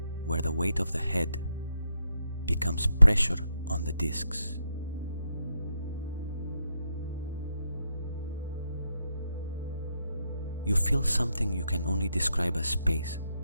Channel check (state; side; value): inverted; both; correlation -0.80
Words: where the weight of the head becomes pressure on the discs. You feel something you can only describe as space,